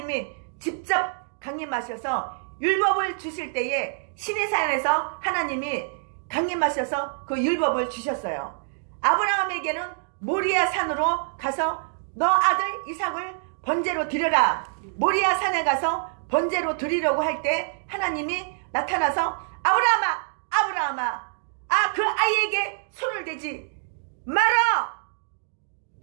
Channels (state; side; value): silent; left; digital silence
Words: 직접 강림하셔서 율법을 주실 때에 시내산에서 하나님이 강림하셔서 그 율법을 주셨어요. 아브라함에게는 모리아 산으로 가서 너 아들 이삭을 번제로 드려라. 모리아 산에 가서 번제로 드리려고 할 때 하나님이 나타나서 아브라함아, 아브라함아, 그 아이에게 손을 대지 마라